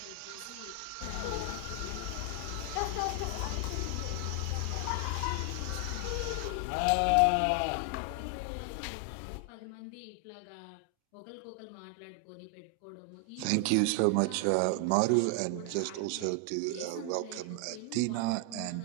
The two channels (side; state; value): both; different; correlation 0.00